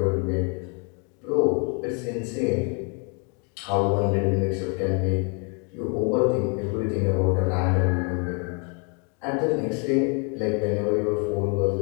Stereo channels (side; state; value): right; quieter; 36.4 dB